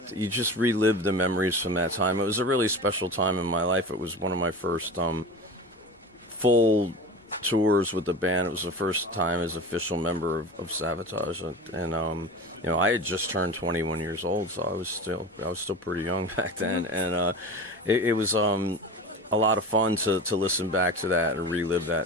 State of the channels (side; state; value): both; normal; correlation 0.31